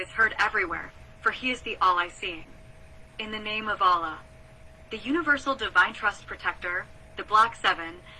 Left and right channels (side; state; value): both; identical; correlation 1.00